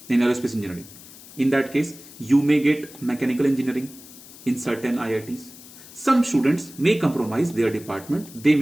engineering. In that case, you may get mechanical engineering in certain IITs. Some students may compromise their department. They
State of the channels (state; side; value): noise; left; hiss, 19 dB below the sound